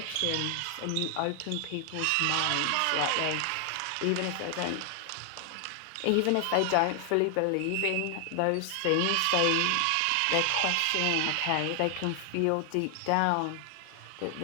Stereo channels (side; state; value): both; different; correlation 0.00